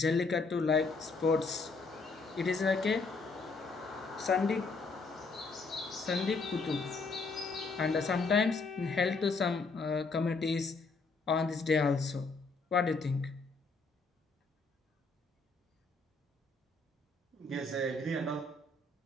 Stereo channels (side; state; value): right; quieter; 3.9 dB